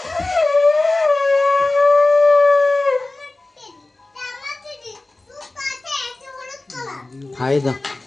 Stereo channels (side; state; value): right; quieter; 3.0 dB